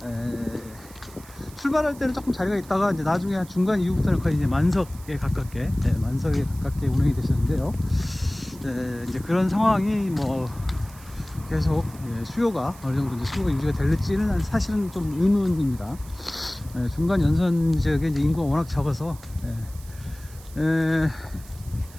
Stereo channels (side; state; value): right; noise; hiss, 21 dB below the sound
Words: 출발할 때는 조금 자리가 있다가 이제 나중에 한 중간 이후부터는 거의 이제 만석에 가깝게 운행이 되셨는데요. 이제 그런 상황이 뭐 계속 수요가 어느 정도 이제 수요가 유지가 될지는 사실은 좀 의문입니다. 중간 연선 지역에 이제 인구가 워낙 적어서